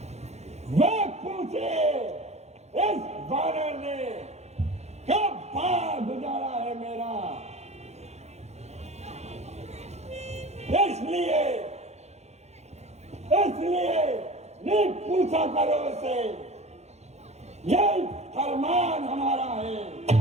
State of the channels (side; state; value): left; late; 0.32 ms